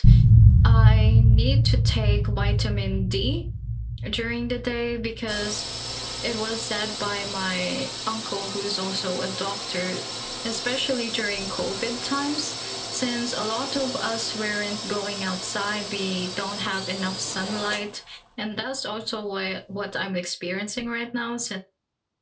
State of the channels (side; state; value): both; identical; correlation 1.00